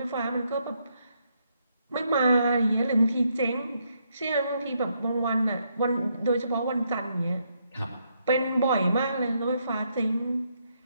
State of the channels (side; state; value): both; inverted; correlation -0.76